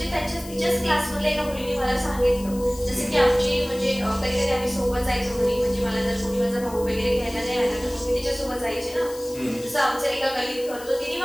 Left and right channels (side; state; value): left; noise; hiss, 17 dB below the sound